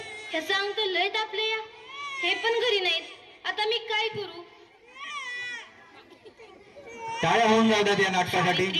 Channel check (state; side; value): identical; both; correlation 1.00